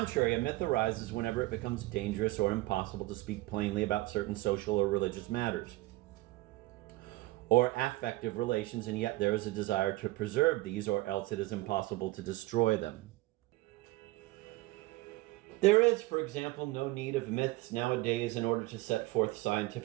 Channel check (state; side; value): quieter; left; 19.7 dB